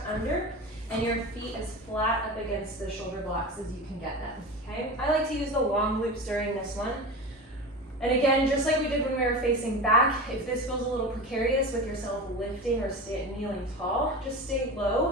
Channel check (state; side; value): normal; both; correlation 0.28